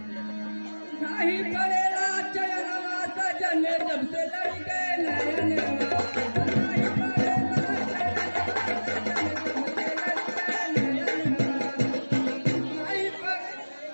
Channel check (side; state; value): both; inverted; correlation -1.00